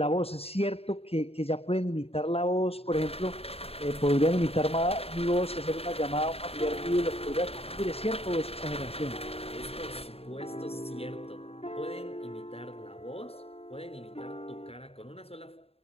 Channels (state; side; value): late; right; 0.29 ms